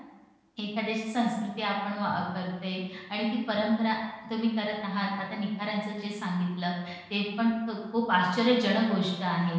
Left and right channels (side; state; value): both; identical; correlation 1.00